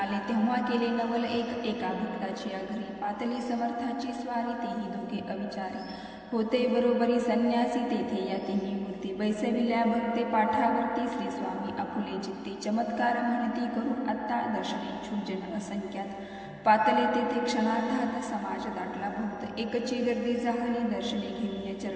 तेव्हा केले नवल एका भक्ताची घरी. पातली समर्थाची स्वारी, तेही दोघे अविचारी. होते बरोबरी संन्यासी, तेथे या तिन्ही मूर्ती. बैसविल्या भक्ते पाठावरती. श्री स्वामी आपुले चित्ती, चमत्कार म्हणती करू आत्ता. दर्शनेच्छुक जन असंख्यात, पातले तेथे क्षणार्धात. समाज दाटला बहुत, एकची गर्दी झाली. दर्शने घेऊन या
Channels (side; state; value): both; identical; correlation 1.00